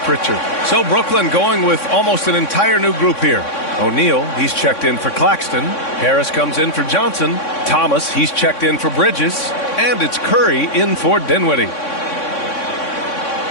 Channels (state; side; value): late; right; 3.6 ms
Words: So Brooklyn going with almost an entire new group here. O'Neal, he's checked in for Claxton. Harris comes in for Johnson. Thomas, he's checked in for Bridges. And it's Curry in for Dinwiddie.